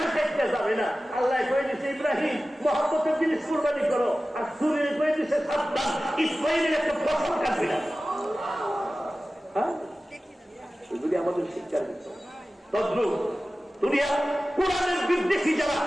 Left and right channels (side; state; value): both; normal; correlation 0.96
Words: কাটতে যাবে না। আল্লাহ কয়ে দিছে ইব্রাহিম মহব্বতের জিনিস কুরবানি করো, আর ছুরি কয়ে দিছে সাবধান, ইসমাইলের একটা ফসল কাটবে না। হ্যাঁ, এগুলি আমাদের শিক্ষার বিষয়। তদ্রুপ দুনিয়া কোরআনের বিদ্বেষী যারা,